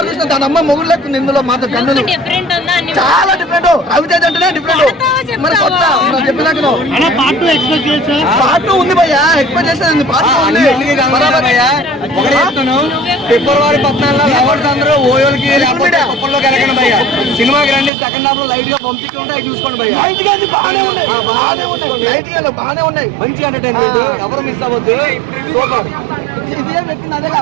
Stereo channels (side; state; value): left; drops out; at 17.9 s